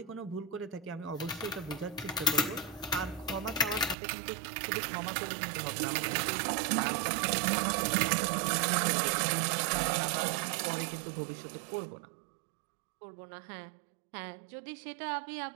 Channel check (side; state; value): left; drops out; at 4.0 s